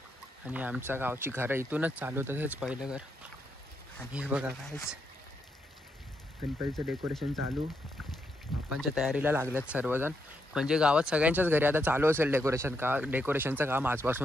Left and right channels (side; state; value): both; normal; correlation 0.80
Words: आणि आमच्या गावची घरं इथूनच चालू होतं, हेच पहिलं घर. आणि हे बघा कायच गणपतीचं डेकोरेशन चालू, बाप्पांच्या तयारीला लागल्यात सर्वजण. म्हणजे गावात सगळ्यांच्याच घरी आता चालू असेल डेकोरेशनचं काम